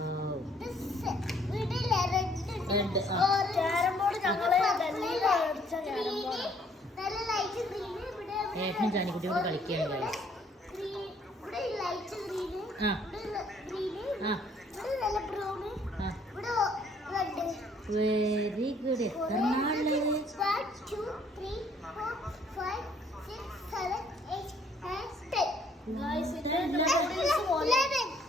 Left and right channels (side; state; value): both; normal; correlation 0.63